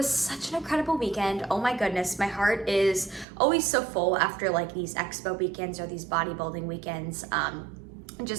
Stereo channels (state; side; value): drops out; left; at 3.2 s